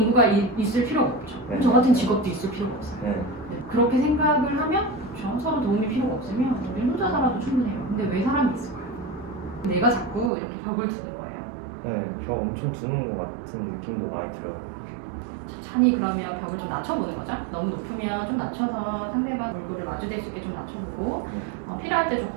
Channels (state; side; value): drops out; left; at 10.3 s